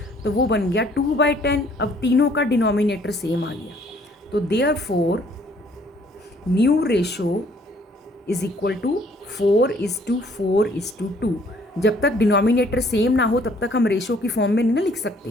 तो वो बन गया 2/10। अब तीनों का डिनोमिनेटर सेम आ गया, तो therefore new ratio is equal to 4:4:2। जब तक डिनोमिनेटर सेम ना हो तब तक हम रेशो की फॉर्म में नहीं ना लिख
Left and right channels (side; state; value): both; normal; correlation 0.61